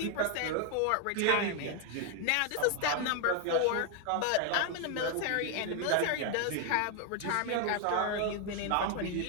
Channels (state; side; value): different; both; correlation 0.00